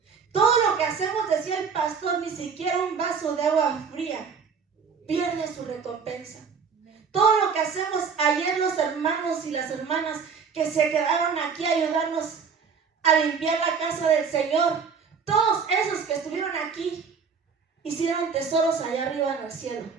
Todo lo que hacemos, decía el pastor, ni siquiera un vaso de agua fría pierde su recompensa. Todo lo que hacemos, ayer los hermanos y las hermanas que se quedaron aquí a ayudarnos a limpiar la casa del Señor, todos esos que estuvieron aquí hicieron tesoros allá arriba en el cielo.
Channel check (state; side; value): quieter; left; 5.9 dB